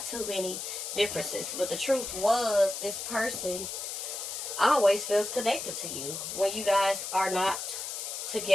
too many differences. But the truth was, this person always feels connected to you when you guys are not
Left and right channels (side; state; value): left; noise; hiss, 5 dB below the sound